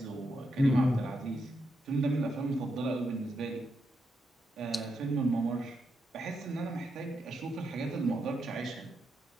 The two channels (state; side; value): normal; both; correlation 0.83